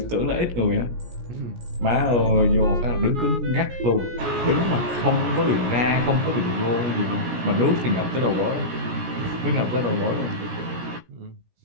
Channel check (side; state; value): left; late; 17 ms